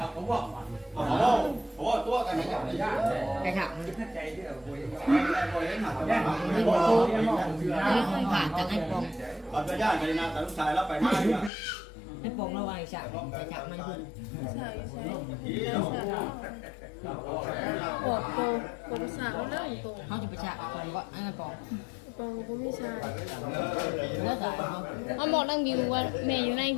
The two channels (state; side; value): drops out; right; at 11.5 s